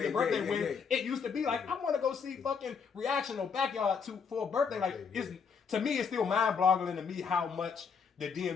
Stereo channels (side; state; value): right; quieter; 6.0 dB